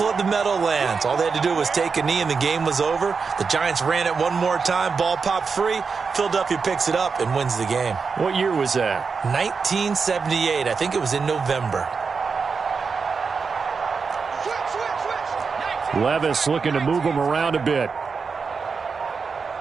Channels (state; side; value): quieter; left; 5.2 dB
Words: of the Meadowlands. All they had to do was take a knee and the game was over. The Giants ran it one more time. Ball popped free. Philadelphia picks it up and wins the game. What year was that? 1978. I think it was in November. Levis looking to move him around a bit.